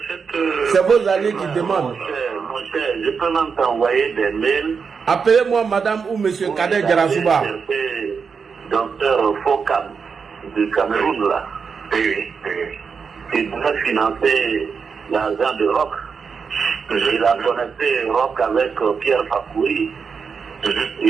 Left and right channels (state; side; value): quieter; left; 5.8 dB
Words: C'est vos alliés qui demandent. Mon cher, je peux même t'envoyer des mails. Appelez-moi madame ou monsieur Kader Djarasouba. Docteur Fokam du Cameroun, là. Il devait financer l'argent de Rock. Il a connecté Rock avec Pierre Fakouri.